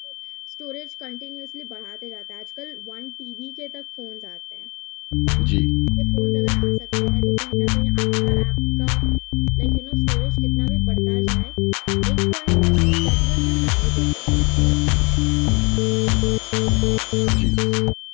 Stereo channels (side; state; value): right; quieter; 28.8 dB